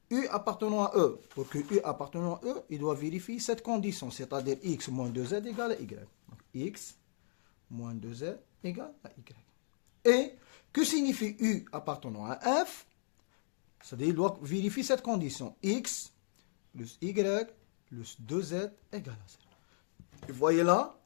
U appartenant à E? Pour que U appartenant à E, il doit vérifier cette condition, c'est-à-dire X moins 2Z égale à Y. Donc, X moins 2Z égale à Y. Et que signifie U appartenant à F? C'est-à-dire qu'il doit vérifier cette condition. X plus Y plus 2Z égale à 0. Vous voyez là,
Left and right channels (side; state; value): right; silent; digital silence